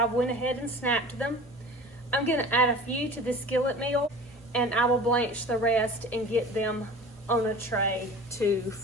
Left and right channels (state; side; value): normal; both; correlation 0.40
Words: went ahead and snapped them. I'm gonna add a few to the skillet meal, and I will blanch the rest and get them on a tray to